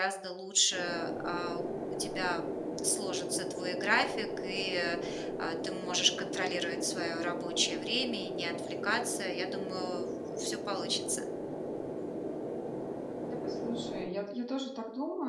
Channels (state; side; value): identical; both; correlation 1.00